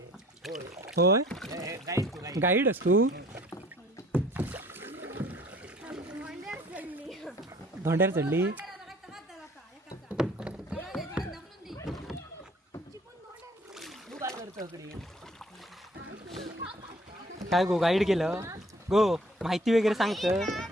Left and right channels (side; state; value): both; normal; correlation 0.55